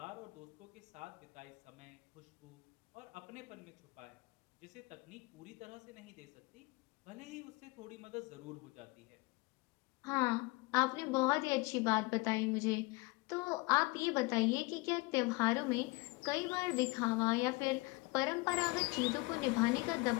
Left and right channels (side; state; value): right; quieter; 25.1 dB